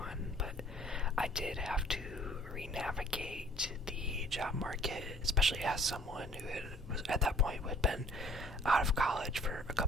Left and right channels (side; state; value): both; normal; correlation 0.55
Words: but I did have to re-navigate the job market, especially as someone who was at that point who had been out of college for a